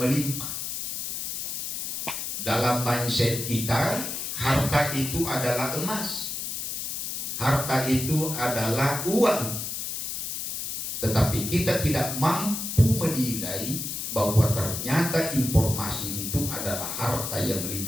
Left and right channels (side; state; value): left; noise; hiss, 4 dB below the sound